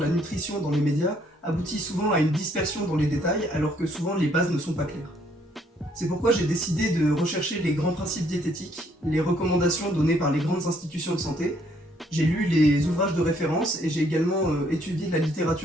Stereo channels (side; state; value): both; normal; correlation 0.67